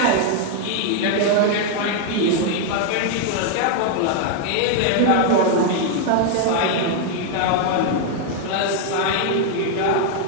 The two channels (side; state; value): both; different; correlation 0.00